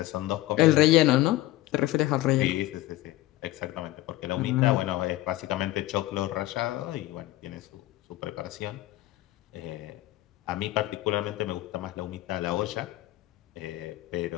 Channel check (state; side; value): quieter; right; 16.7 dB